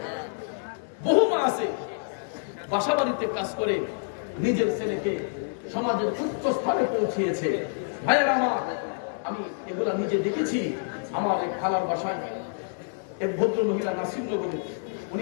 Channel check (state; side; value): silent; right; digital silence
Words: বহু মা আছে বাসা বাড়িতে কাজ করে নিজের ছেলেকে সমাজের উচ্চ স্থানে পৌঁছিয়েছে। ভাইয়ের আমার, আমি এগুলা নিজে দেখেছি। আমার এক খালার বাসায় এক ভদ্র মহিলা নাসিরনগরে